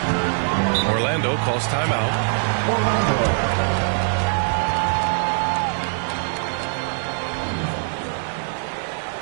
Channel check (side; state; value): left; silent; digital silence